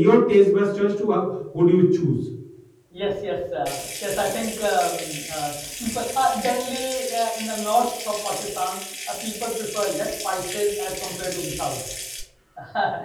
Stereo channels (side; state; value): both; identical; correlation 1.00